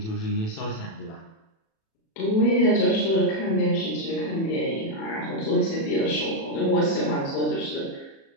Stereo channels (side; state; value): right; late; 37 ms